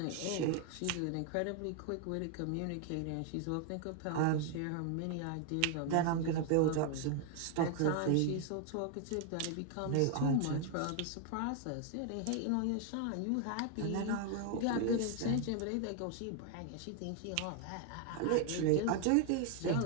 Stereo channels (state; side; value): different; both; correlation 0.00